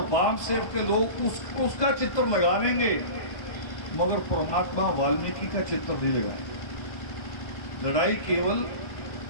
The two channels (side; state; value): right; late; 1.2 ms